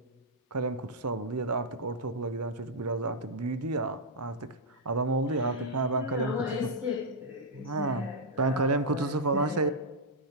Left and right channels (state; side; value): normal; both; correlation -0.07